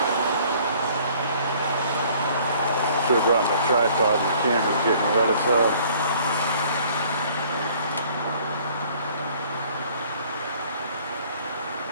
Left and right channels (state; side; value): inverted; both; correlation -0.56